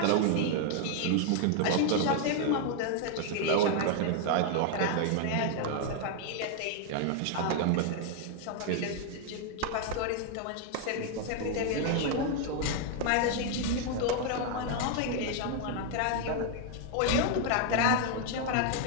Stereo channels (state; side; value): different; both; correlation 0.00